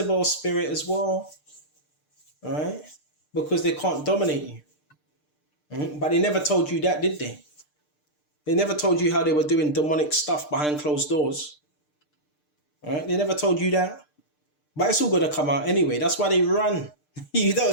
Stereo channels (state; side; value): late; right; 6.7 ms